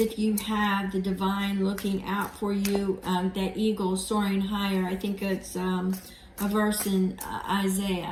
you have the divine looking out for you, that eagle soaring higher. I think it's a verse in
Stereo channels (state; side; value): identical; both; correlation 1.00